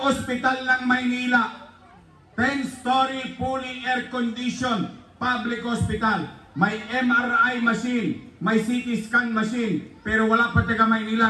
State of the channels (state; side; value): identical; both; correlation 1.00